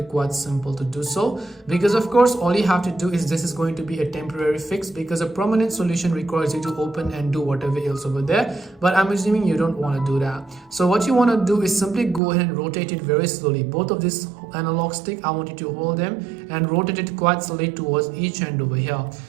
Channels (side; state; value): left; drops out; at 12.2 s